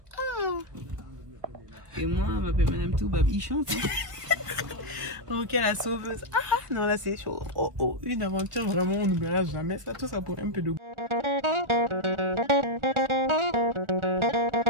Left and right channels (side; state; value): left; late; 1.4 ms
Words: Et moi on m'appelle Madame Toubabichon. Ok la sauveuse. Ah non là c'est chaud. Oh, une aventure vraiment on n'oubliera jamais ça, tout ça pour un peu de goût.